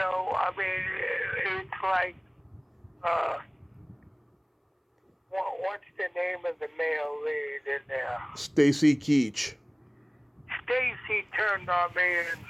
I mean, it's like, what's the name of the male lead in there? Stacy Keach. Stacy turned on me and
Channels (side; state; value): both; identical; correlation 1.00